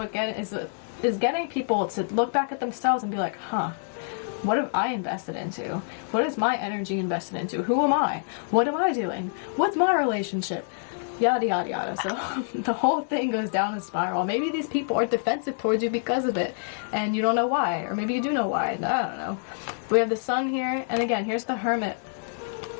is getting people to look back at themselves and be like, huh, what have I invested into? What is my energy invested into? Who am I? What am I doing? What's my relationship? Yada, yada, yada. So the whole thing goes down a spiral. Maybe these people are defensive towards you because of it, and you don't know why. Or maybe you do know why. I don't know. We have the Sun here, and again, here's the Hermit.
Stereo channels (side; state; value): right; silent; digital silence